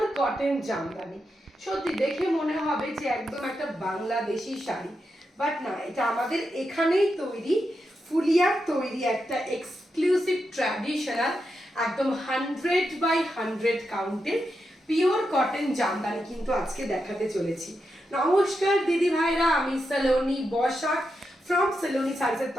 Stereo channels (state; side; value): normal; both; correlation 0.86